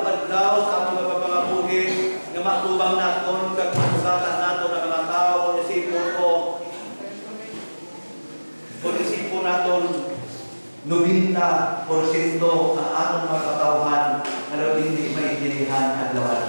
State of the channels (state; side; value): inverted; both; correlation -1.00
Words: daw sa among pagpapangabuhi nga matubang naton kag masugatan naton ang mga tao kung isipon ko. Kung isipon naton 90% ang atong mga katawhan na hindi maintindihan ang